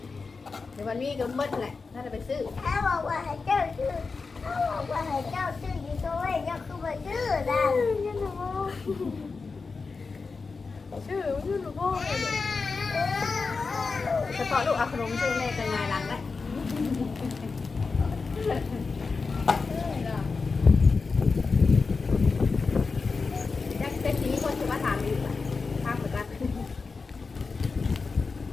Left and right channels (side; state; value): right; quieter; 4.5 dB